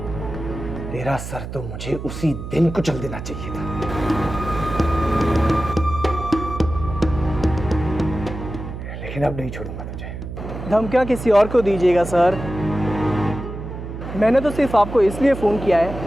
तेरा सर तो मुझे उसी दिन कुचल देना चाहिए था। लेकिन अब नहीं छोड़ूंगा तुझे। धमकियाँ किसी और को दीजिएगा सर। मैंने तो सिर्फ आपको इसलिए फ़ोन किया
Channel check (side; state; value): right; noise; hum, 8 dB below the sound